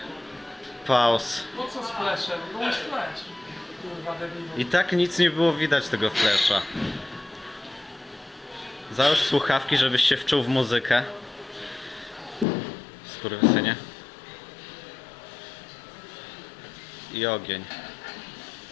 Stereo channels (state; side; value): drops out; right; at 12.5 s